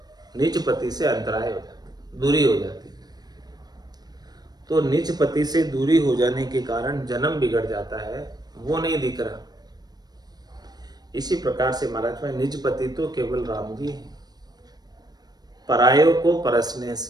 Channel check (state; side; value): late; left; 0.19 ms